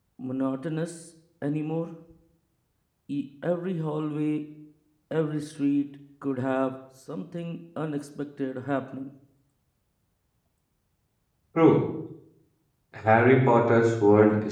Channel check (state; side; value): identical; both; correlation 1.00